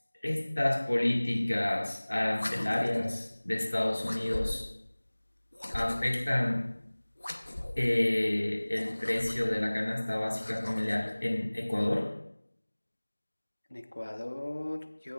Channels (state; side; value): inverted; both; correlation -1.00